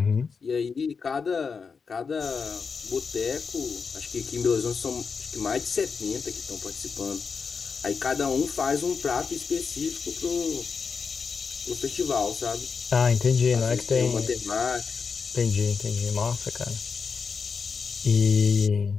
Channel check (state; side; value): quieter; right; 5.4 dB